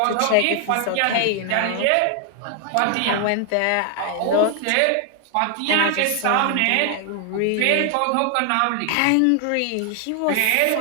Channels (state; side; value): different; both; correlation 0.00